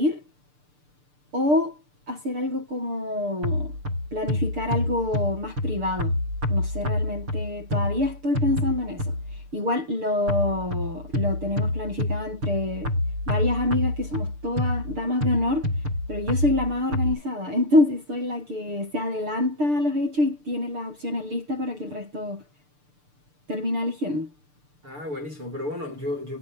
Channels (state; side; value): late; left; 6.7 ms